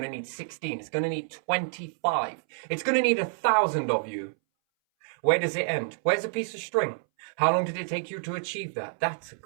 to need 16. It's going to need 25. It's going to need 1,000 of you. Where does it end? Where's a piece of string? How long did it take you to achieve that? That's a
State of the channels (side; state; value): left; silent; 59 dB below the other